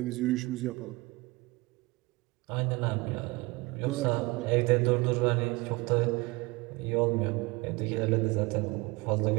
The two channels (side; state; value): left; quieter; 23.5 dB